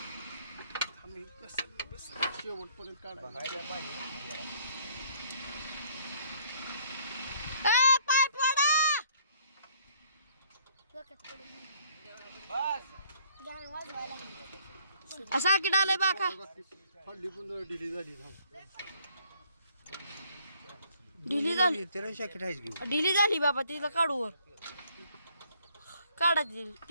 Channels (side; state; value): both; inverted; correlation -0.62